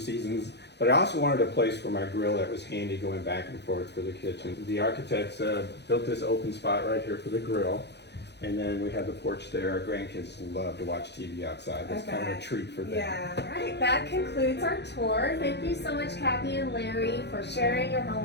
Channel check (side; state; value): right; late; 0.50 ms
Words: But I also wanted a place for my grill that was handy going back and forth for the kitchen. The architects built this open spot right here for the grill. And then we have the porch there. Our grandkids love to watch TV outside. That's kind of a treat for them. Yeah. All right, that concludes our tour. Thank you so much, Kathy and Larry, for sharing your home